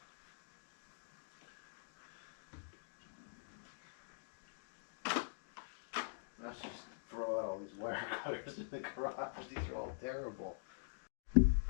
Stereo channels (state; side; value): silent; right; digital silence